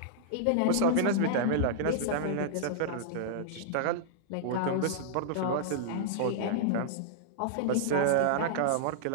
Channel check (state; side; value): different; both; correlation -0.02